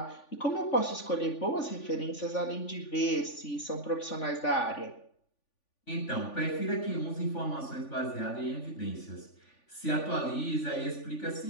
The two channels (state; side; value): late; right; 3.5 ms